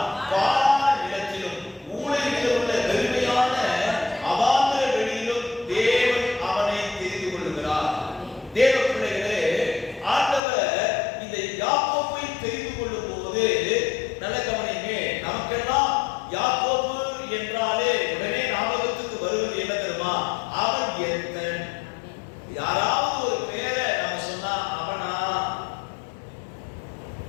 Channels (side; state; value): right; drops out; at 10.4 s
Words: பாழ் நிலத்திலும் ஊழை இடத்திலுள்ள வெறுமையான அவாந்தர வெளியிலும் தேவன் அவனை தெரிந்து கொள்கிறார். தேவ பிள்ளைகளே, ஆண்டவர் இந்த யாக்கோபை தெரிந்து கொள்ளும் போது நல்ல கவனிங்க, நமக்கெல்லாம் யாக்கோபு என்றாலே உடனே ஞாபகத்துக்கு வருவது என்ன தெரியுமா? அவன் எத்தன். யாராவது ஒரு பேரை நம்ம சொன்னா அவனா